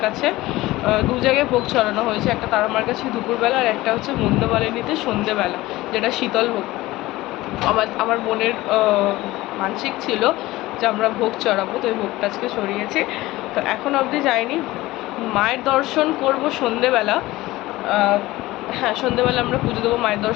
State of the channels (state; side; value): quieter; right; 18.4 dB